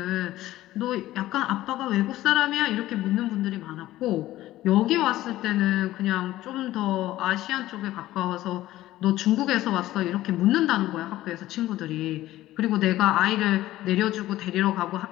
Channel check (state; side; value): quieter; right; 15.4 dB